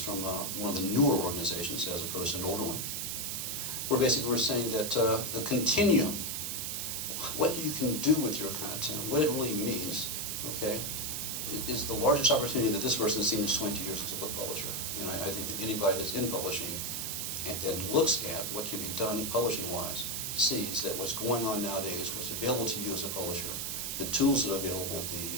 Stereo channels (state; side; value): noise; right; hiss, 3 dB below the sound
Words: from one of the newer organizations as opposed to an older one. Where basically we're saying that the continuum, what you can do with your content, what it really means, okay, is the largest opportunity that this person has seen in 20 years as a book publisher. And I think that anybody that's in publishing and then looks at what can be done publishing-wise sees that what's going on nowadays, what's available to you as a publisher, the tools that are available,